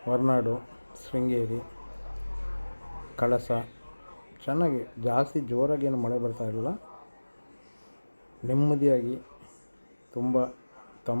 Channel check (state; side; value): inverted; both; correlation -1.00